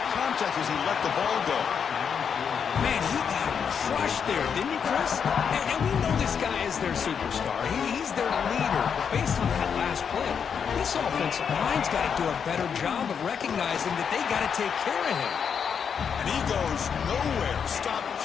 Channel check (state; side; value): quieter; right; 7.0 dB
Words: Contact as he let the ball go. Man, he got crushed there, didn't he, Chris? And we know this guy is their superstar. He's their leader. Based on that last play, this offensive line's got to do a better job of recognizing that they got to take care of him. And he goes nowhere. Stopped